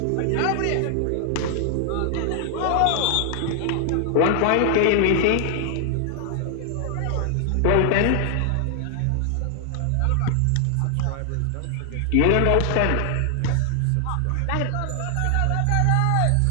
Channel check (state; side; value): different; both; correlation 0.00